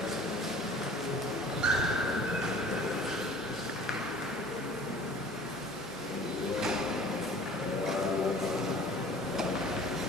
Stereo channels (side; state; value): both; normal; correlation 0.47